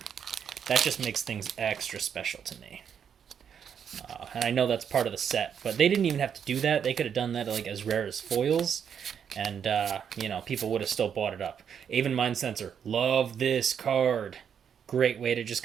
That just makes things extra special to me. And I know that's part of the set, but they didn't even have to do that. They could have done that like as rare as foils, and you know, people would have still bought it up. Aven Mind Sensor, love this card. Great way to just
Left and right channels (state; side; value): quieter; left; 7.9 dB